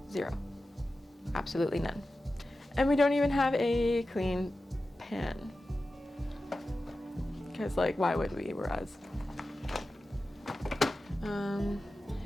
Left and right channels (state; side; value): normal; both; correlation 0.94